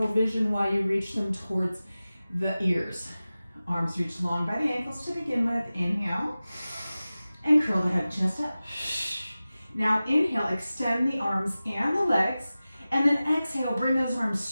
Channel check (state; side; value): inverted; both; correlation -0.96